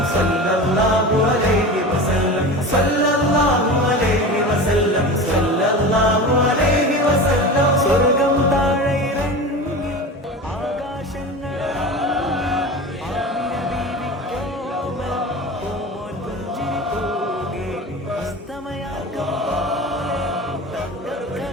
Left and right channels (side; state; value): both; normal; correlation 0.31